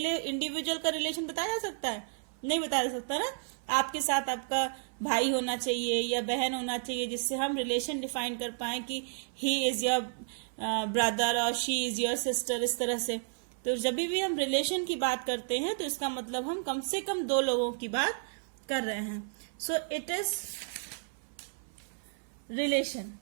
इंडिविजुअल का रिलेशन बताया जा सकता है? नहीं बताया जा सकता ना। आपके साथ आपका भाई होना चाहिए या बहन होना चाहिए जिससे हम रिलेशन डिफाइन कर पाए कि ही इज योर ब्रदर और शी इज योर सिस्टर, इस तरह से। तो जब भी हम रिलेशन की बात करते हैं तो इसका मतलब हम कम से कम 2 लोगों की बात कर रहे हैं। So it is relation.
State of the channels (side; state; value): left; silent; 55 dB below the other